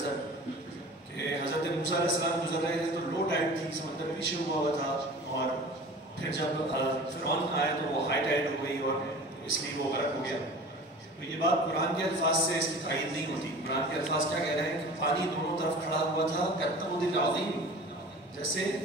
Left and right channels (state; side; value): normal; both; correlation 0.40